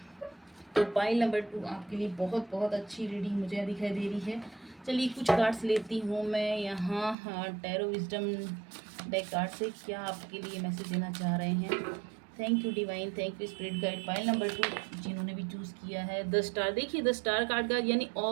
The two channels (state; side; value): drops out; left; at 7.2 s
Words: तो पाइल नंबर 2 आपके लिए बहुत बहुत अच्छी रीडिंग मुझे दिखाई दे रही है। चलिए कुछ कार्ड्स लेती हूँ मैं यहाँ। टैरो विजडम डेक कार्ड से क्या आपके लिए मैसेज देना चाह रहे हैं? Thank you divine, thank you spirit guide. Pile number 2 जिन्होंने भी चूज़ किया है, द स्टार। देखिए द स्टार कार्ड का यानी